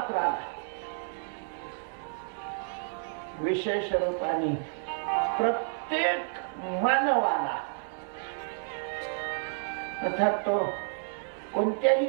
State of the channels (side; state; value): left; silent; 58 dB below the other